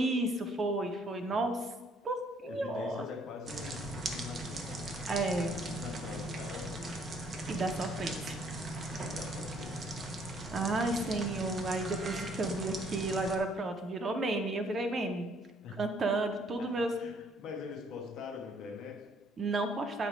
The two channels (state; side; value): normal; both; correlation 0.64